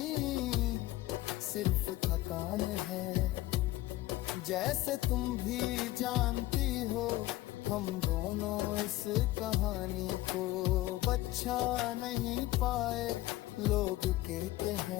सिर्फ थकान है। जैसे तुम भी जानती हो, हम दोनों इस कहानी को बचा नहीं पाए। लोग कहते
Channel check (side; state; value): right; quieter; 17.0 dB